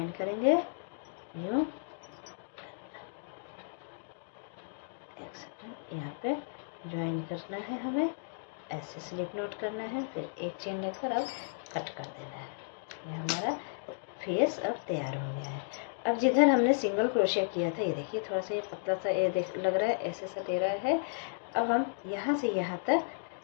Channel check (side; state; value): right; silent; digital silence